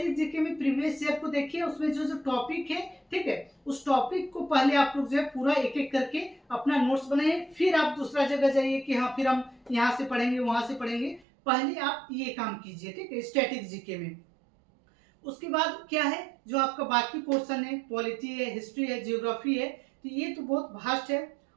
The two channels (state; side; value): drops out; left; at 11.2 s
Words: जीके में प्रीवियस ईयर को देखिए, उसमें जो जो टॉपिक है, ठीक है, उस टॉपिक को पहले आप लोग जो है पूरा एक एक करके अपना नोट्स बनाइए, फिर आप दूसरा जगह जाइए कि हाँ फिर हम यहाँ से पढ़ेंगे वहां से पढ़ेंगे, पहले आप ये काम कीजिए। ठीक है, स्टैटिक जीके में। उसके बाद क्या है, जो आपका बाकी पोर्शन है, पॉलिटी है, हिस्ट्री है, जियोग्राफी है, तो ये तो बहुत वास्ट है,